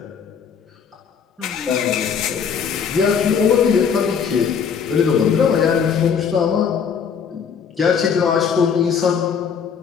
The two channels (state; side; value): quieter; right; 6.8 dB